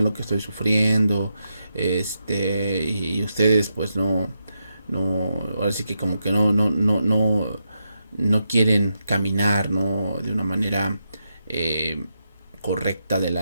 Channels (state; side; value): inverted; both; correlation -0.85